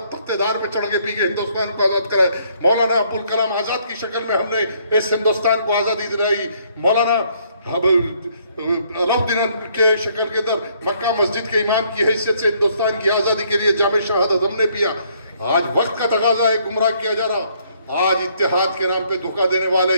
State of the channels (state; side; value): inverted; both; correlation -0.67